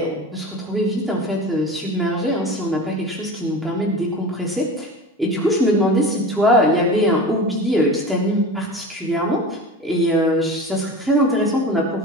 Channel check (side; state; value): both; normal; correlation 0.33